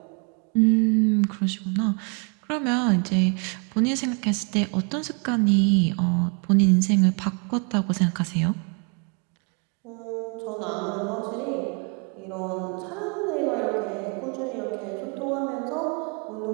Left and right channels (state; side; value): quieter; left; 36.0 dB